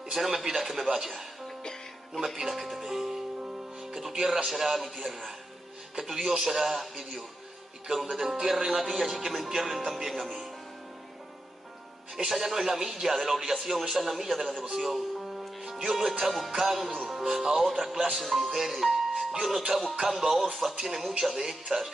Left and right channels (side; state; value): both; normal; correlation 0.88